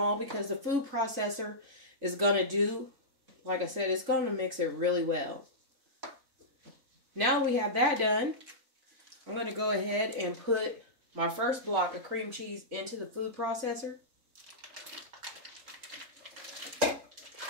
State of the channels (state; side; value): late; left; 3.9 ms